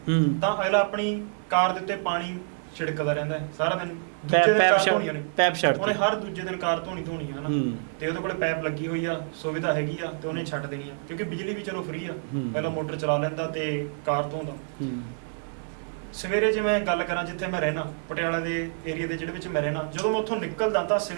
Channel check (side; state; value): left; silent; digital silence